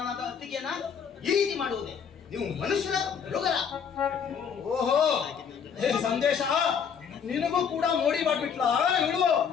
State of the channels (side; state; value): right; quieter; 7.1 dB